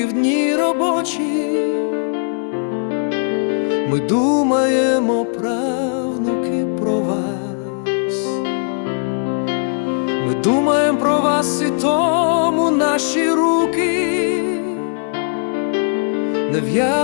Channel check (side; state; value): right; silent; 61 dB below the other